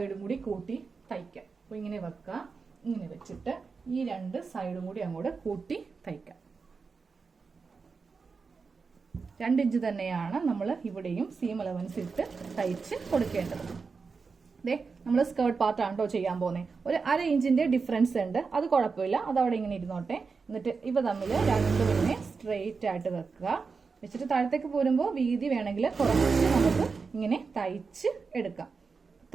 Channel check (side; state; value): left; quieter; 4.9 dB